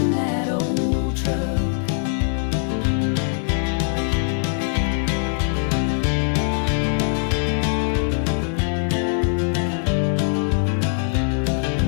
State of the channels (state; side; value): silent; right; 56 dB below the other